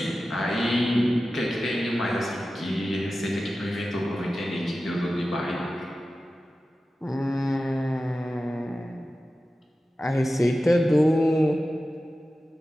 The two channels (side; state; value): both; normal; correlation 0.94